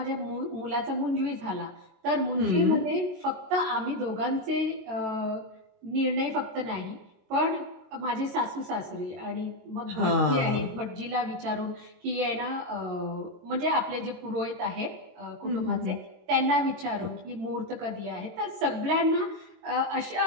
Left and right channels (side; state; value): left; late; 22 ms